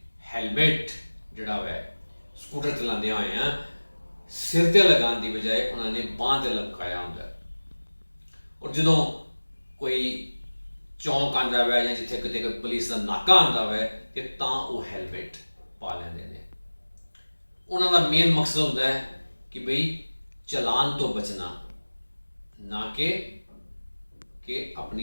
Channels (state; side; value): inverted; both; correlation -1.00